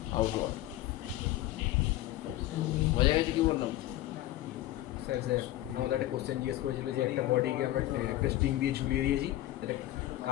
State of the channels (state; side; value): quieter; right; 15.1 dB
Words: আউটওয়ার্ড। বোঝা গেছে কি বললাম? স্যার আমাদের একটা কোশ্চেন জিজ্ঞেস করেছিল যে একটা বডিকে আমরা একটা স্ট্রিং দিয়ে ঝুলিয়ে দিয়েছি, এটা